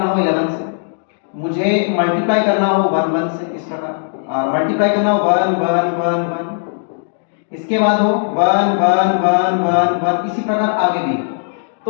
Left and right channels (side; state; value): right; silent; digital silence